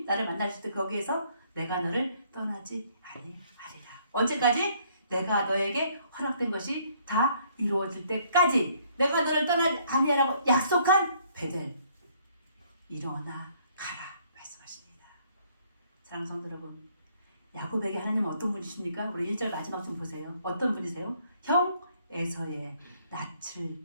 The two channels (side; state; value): both; inverted; correlation -0.65